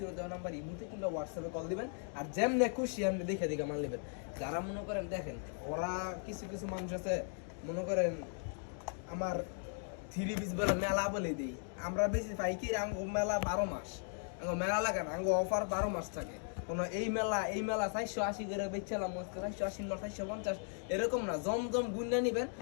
দেওয়া নাম্বার ইমোতে কিংবা হোয়াটসঅ্যাপে কল দিবেন। আর যেমনি খুশি আপনি দেখে দেখে মাল নেবেন। যারা মনে করেন দেখেন ওরা কিছু কিছু মানুষ আছে মনে করেন আমার থ্রি পিস বলে মেলা বলে দিই, আমরা বেশি পাইকারি আঙ্গো মেলা 12 মাস, আঙ্গো মেলা লাগে না, আঙ্গো অফার 12 মাস থাকে। কোনো এই মেলা 480 করে বেচলাম, 480 না 450 এরকম না। জমজম গুন্ডা নিবেন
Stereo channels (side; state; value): right; silent; 53 dB below the other